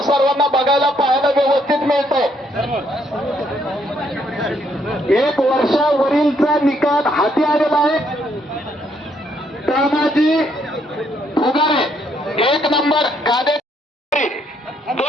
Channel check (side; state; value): both; normal; correlation 0.71